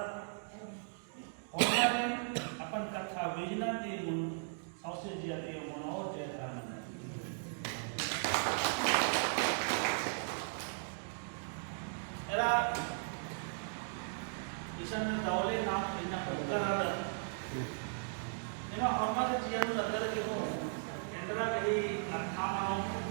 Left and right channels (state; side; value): silent; left; digital silence